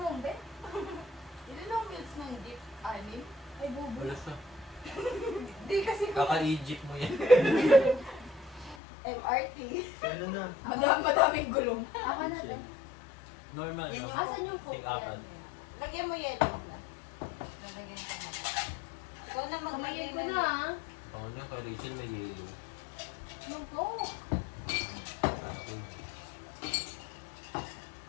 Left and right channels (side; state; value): right; drops out; at 8.8 s